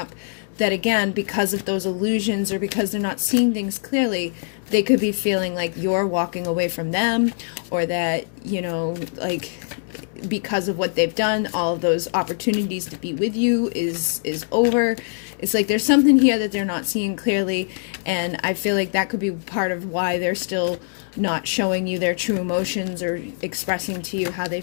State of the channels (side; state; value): right; silent; digital silence